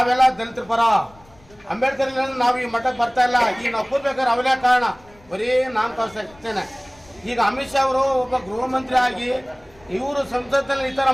ದಲಿತರ ಪರ, ಅಂಬೇಡ್ಕರ್ ನಾವು ಈ ಮಟ್ಟಕ್ಕೆ ಬರ್ತಾ ಇಲ್ಲ. ಈಗ ನಾವು ಕೂರ್ಬೇಕಾದ್ರೆ ಅವರೇ ಕಾರಣ, ಬರೀ ನಾನು ತೋರಿಸ್ತೇನೆ. ಈಗ ಅಮಿತ್ ಶಾ ಅವರು ಒಬ್ಬ ಗೃಹ ಮಂತ್ರಿ ಆಗಿ ಇವರು ಸಂಸತ್ತಲ್ಲಿ ಈ ಥರ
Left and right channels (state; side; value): noise; left; rumble, 27 dB below the sound